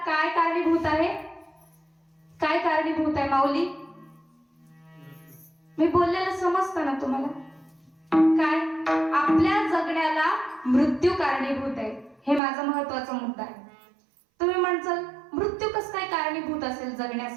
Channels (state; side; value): drops out; left; at 12.4 s